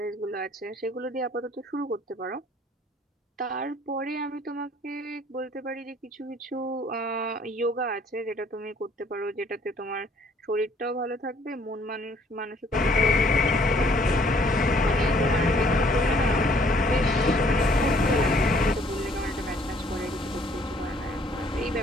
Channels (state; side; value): normal; both; correlation 0.61